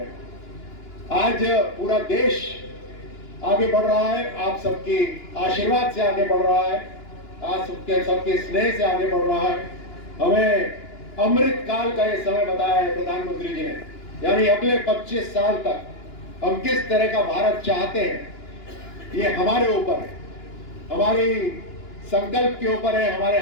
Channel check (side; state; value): right; late; 2.9 ms